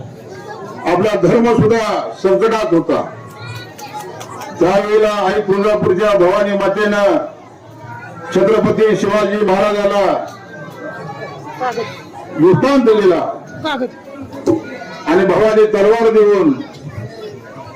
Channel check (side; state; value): both; identical; correlation 1.00